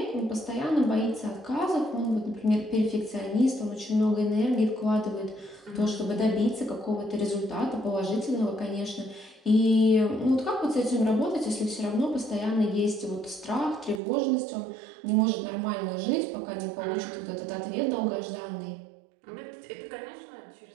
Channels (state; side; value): drops out; left; at 14.0 s